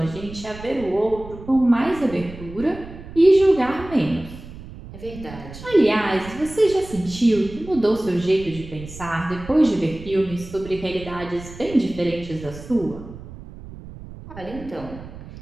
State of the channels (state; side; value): noise; right; rumble, 15 dB below the sound